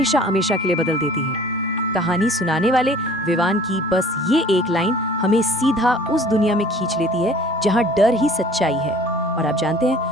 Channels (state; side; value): normal; both; correlation 0.50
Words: हमेशा के लिए बदल देती है। कहानी सुनाने वाले विवान की बस ये एक लाइन हमें सीधा उस दुनिया में खींच लेती है जहाँ डर ही सच्चाई है। और आप जानते